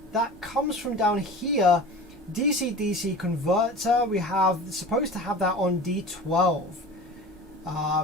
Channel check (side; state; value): both; normal; correlation 0.36